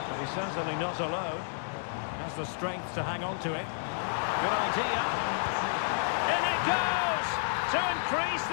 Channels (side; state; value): right; silent; digital silence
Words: But he's certainly not alone. Has the strength to hang on to it. Good idea. In it goes! To increase